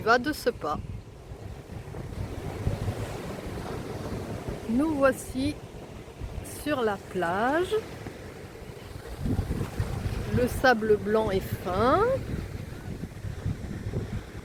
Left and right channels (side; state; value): both; identical; correlation 1.00